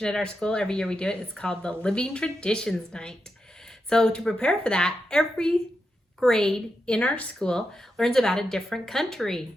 at our school. Every year we do it. It's called the Living Traditions Night. So to prepare for that, every grade in our school learns about a different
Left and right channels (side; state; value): both; normal; correlation 0.87